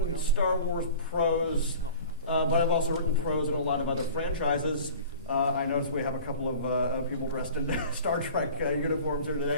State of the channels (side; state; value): both; inverted; correlation -0.43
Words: Star Wars prose, but I've also written prose in a lot of other franchises. I noticed we have a couple of people dressed in Star Trek uniforms here